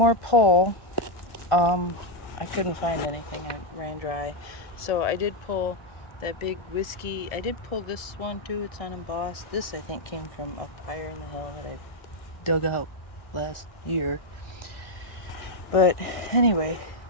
pull, I couldn't find anything. I ran dry. So I did pull that big whiskey. I did pull this one too. It's unembossed. This I think came from up higher in the hill that I dug out last year. But anyway,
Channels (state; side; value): late; right; 1.4 ms